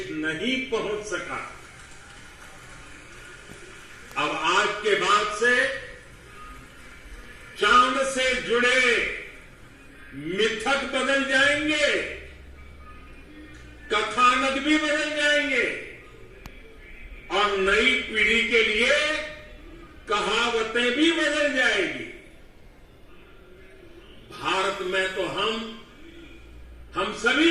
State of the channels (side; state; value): both; identical; correlation 1.00